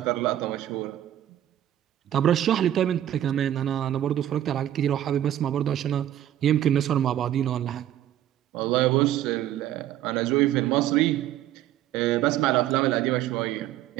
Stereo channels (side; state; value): left; quieter; 12.2 dB